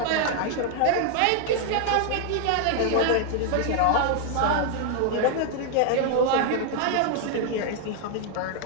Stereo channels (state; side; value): different; both; correlation 0.00